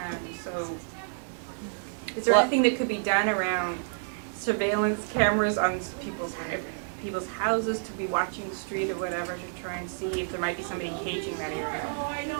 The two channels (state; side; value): silent; left; 58 dB below the other